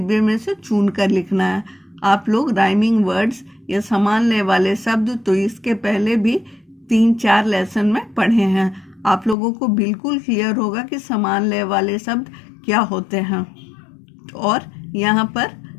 में से चुनकर लिखना है। आप लोग राइमिंग वर्ड्स या समान लय वाले शब्द तो इसके पहले भी 3-4 लेसन में पढ़े हैं। आप लोगों को बिल्कुल क्लियर होगा कि समान लय वाले शब्द क्या होते हैं। और यहाँ पर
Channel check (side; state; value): right; drops out; at 9.3 s